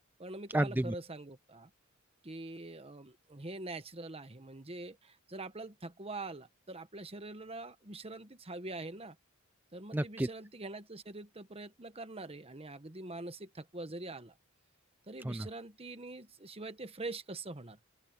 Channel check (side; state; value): both; normal; correlation 0.71